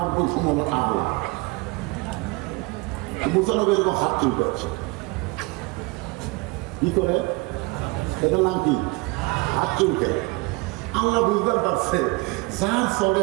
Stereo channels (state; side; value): quieter; left; 25.1 dB